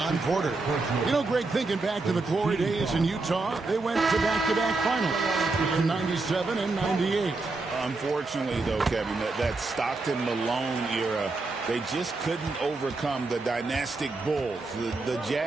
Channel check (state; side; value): quieter; left; 3.5 dB